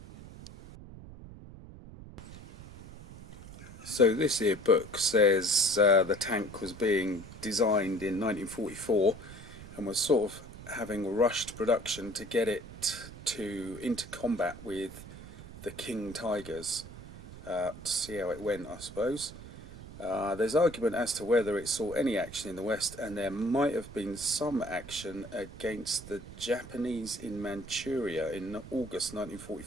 So this here book says the tank was being designed in 1944 and was sort of having rushed production to get it into combat with the King Tigers, to see how it went, I suppose. There's argument as to whether it saw any action in the West, and there might have been some action against the Japanese in Manchuria in August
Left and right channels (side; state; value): right; noise; rumble, 15 dB below the sound